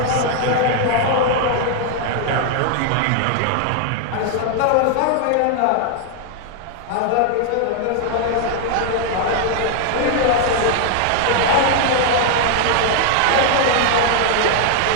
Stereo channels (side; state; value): both; different; correlation 0.00